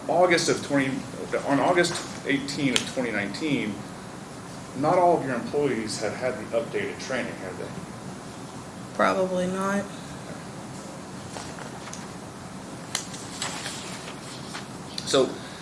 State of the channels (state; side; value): identical; both; correlation 1.00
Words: August 18 of 2019, not all of your employees had had the updated training, had they? Probably not. So,